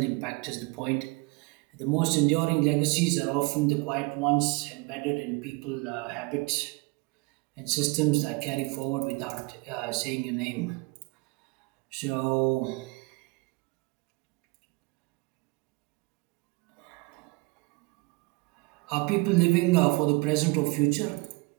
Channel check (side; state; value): left; quieter; 25.9 dB